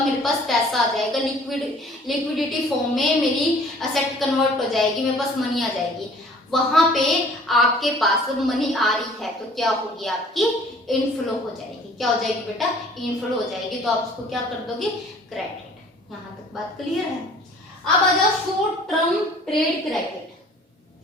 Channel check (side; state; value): both; normal; correlation 0.52